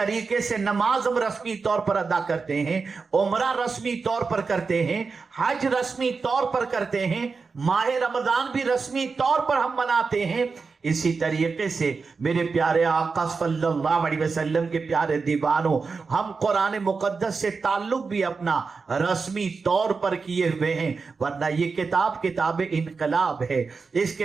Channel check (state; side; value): quieter; left; 4.7 dB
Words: سے نماز ہم رسمی طور پر ادا کرتے ہیں، عمرہ رسمی طور پر کرتے ہیں، حج رسمی طور پر کرتے ہیں، ماہ رمضان بھی رسمی طور پر ہم مناتے ہیں، اسی طریقے سے میرے پیارے آقا صلی اللہ علیہ وسلم کے پیارے دیوانوں، ہم قرآن مقدس سے تعلق بھی اپنا رسمی طور پر کیے ہوئے ہیں، ورنہ یہ کتاب انقلاب ہے۔ اس